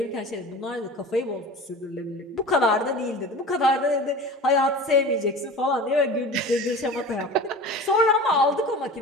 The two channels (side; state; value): both; normal; correlation 0.36